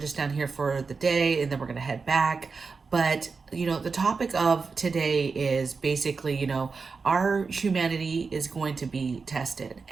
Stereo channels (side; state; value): left; quieter; 4.7 dB